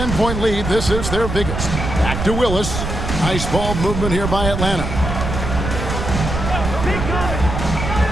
lead. This is their biggest. Back to Willis. Nice ball movement here by Atlanta.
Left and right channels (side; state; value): right; noise; rumble, 3 dB below the sound